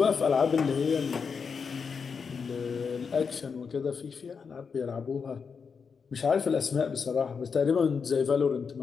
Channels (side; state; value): right; quieter; 5.8 dB